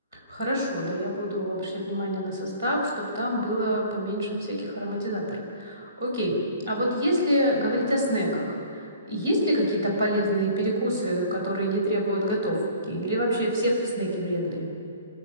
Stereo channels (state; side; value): inverted; both; correlation -0.50